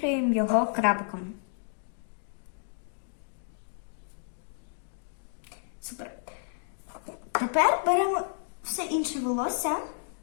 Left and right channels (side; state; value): right; silent; digital silence